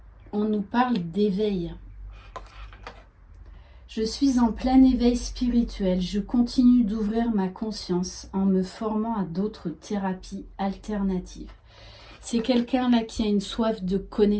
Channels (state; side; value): identical; both; correlation 1.00